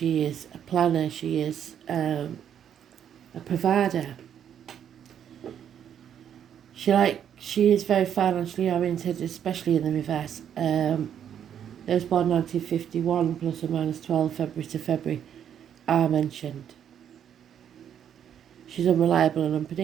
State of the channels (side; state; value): left; quieter; 9.2 dB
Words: is a planner, she is a provider. She is very financially oriented, especially in the reverse. Those born 1951 plus or minus 12 February to February are mentioned. She's unreliable and